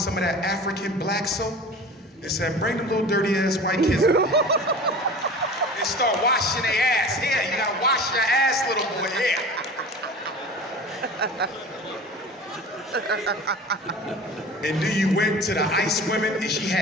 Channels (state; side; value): normal; both; correlation 0.38